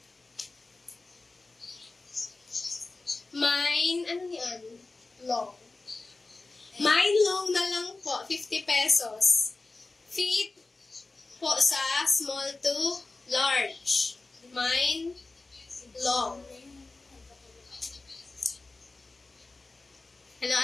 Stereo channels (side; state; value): right; quieter; 3.4 dB